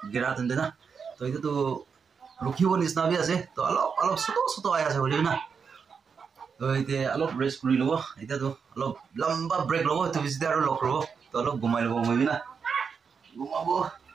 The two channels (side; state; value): left; quieter; 6.0 dB